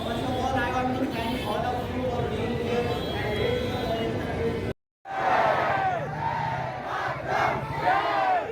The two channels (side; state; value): both; identical; correlation 1.00